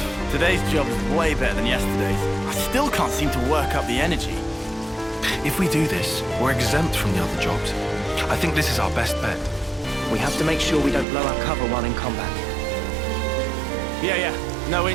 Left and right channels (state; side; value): drops out; left; at 11.1 s